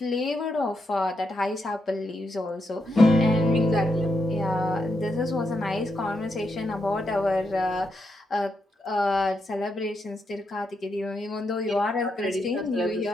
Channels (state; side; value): normal; both; correlation 0.82